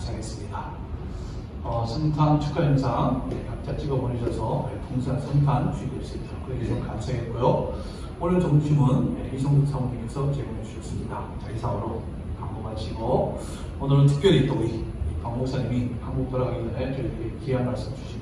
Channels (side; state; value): both; identical; correlation 1.00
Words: 성탄 축하 영상 각자 찍어 보내셔서 풍성한 성탄 주의될 수 있도록 그렇게 좀 감사했고요. 오늘 점심은 이성국 사모님께서 제공해 주셨습니다. 자, 이상으로 광고 마치고 오늘은 특별히 또 우리 박 목사님이 한국 돌아가기 전에 저희에게 귀한 말씀